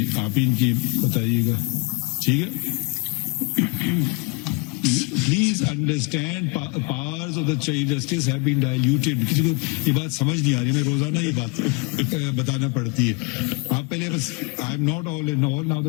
आप ही इनकी बताइएगा. ठीक है. Please understand, powers of the Chief Justice have been diluted. किसी को ये बात समझ नहीं आ रही, हमें रोजाना ये बात बताना पड़ती है. आप पहले बस, I am not all in all. Now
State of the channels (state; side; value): quieter; right; 30.2 dB